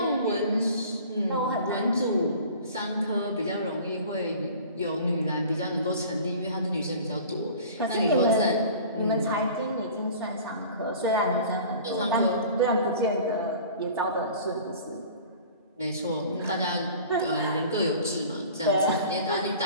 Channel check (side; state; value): both; inverted; correlation -0.44